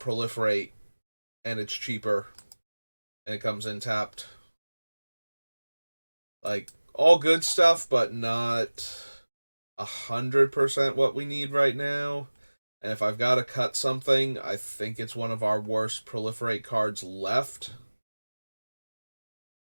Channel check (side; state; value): both; inverted; correlation -1.00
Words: and it's cheaper, and it comes in tapped. Like all good stuff, but not 100% what we need right now. And if I've got to cut something, I think it's one of our worst proliferate cards left.